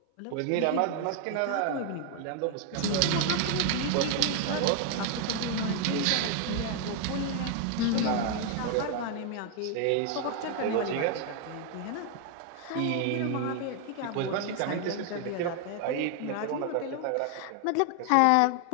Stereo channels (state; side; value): different; both; correlation 0.00